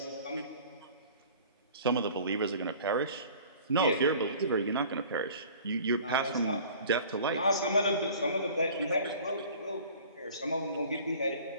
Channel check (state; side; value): inverted; both; correlation -0.47